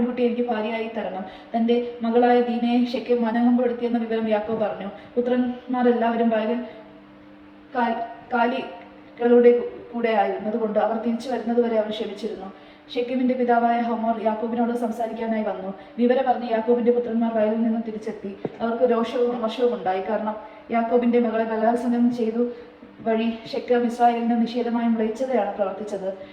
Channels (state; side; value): identical; both; correlation 1.00